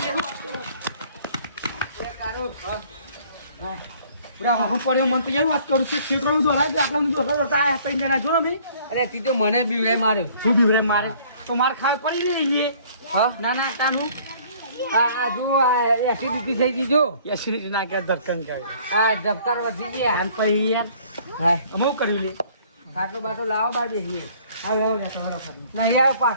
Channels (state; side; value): inverted; both; correlation -0.56